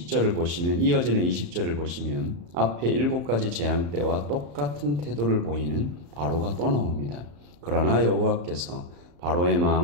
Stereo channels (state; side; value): late; left; 34 ms